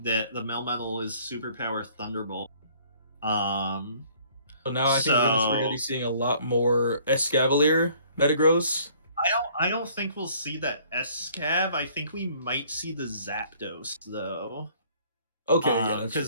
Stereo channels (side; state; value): both; inverted; correlation -0.58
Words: the Melmetal is Superpower Thunderbolt. Um, So now I think we're gonna be so seeing a lot more Escavalier Metagross. I don't think we'll see that Escav. I think we might see the Zapdos though. Okay, yeah, that's